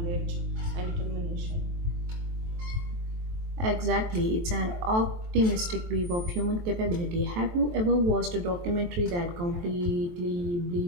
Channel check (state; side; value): late; left; 23 ms